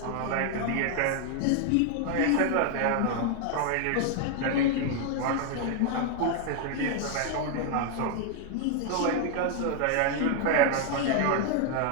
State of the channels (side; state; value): both; different; correlation 0.00